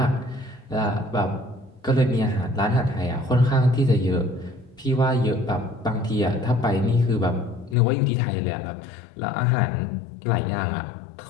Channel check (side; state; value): right; drops out; at 7.8 s